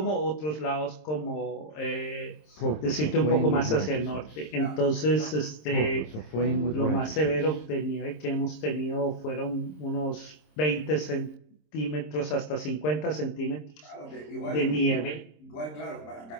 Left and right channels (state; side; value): late; right; 26 ms